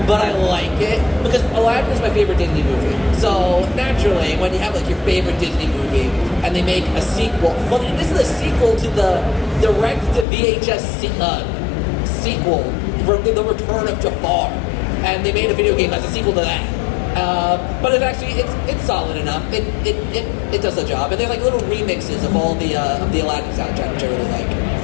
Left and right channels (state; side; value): drops out; right; at 10.2 s